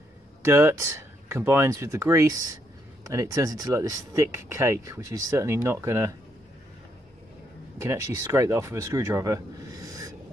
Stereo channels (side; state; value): both; normal; correlation 0.75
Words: dirt combines with the grease and it turns into like this thick cake, which is certainly not gonna, you can actually scrape that off with a screwdriver.